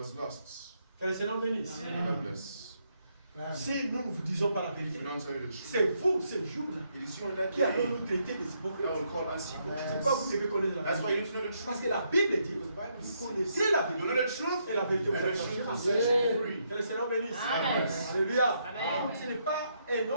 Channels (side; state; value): both; inverted; correlation -0.76